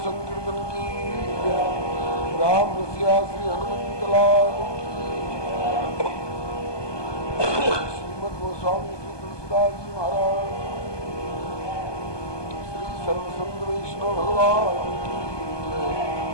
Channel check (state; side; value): late; right; 1.2 ms